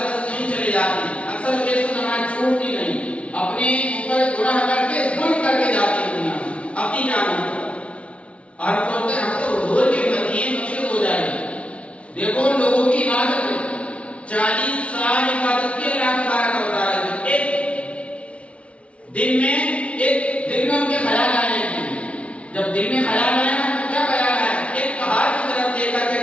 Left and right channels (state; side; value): late; right; 0.062 ms